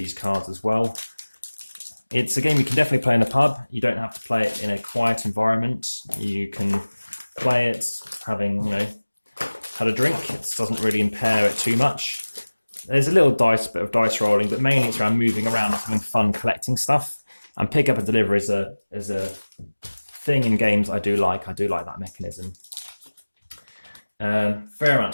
cards as well. It's a game you can definitely play in a pub. You don't have to play it in a quiet environment. You can play it having, had a drink. It doesn't really impair it too much. There's a little bit of dice rolling, but mainly it's around moving around and having fun collecting stuff. And pick up and deliver is a thing in games I do like. I do like that mechanism. Fair amount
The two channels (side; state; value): both; inverted; correlation -1.00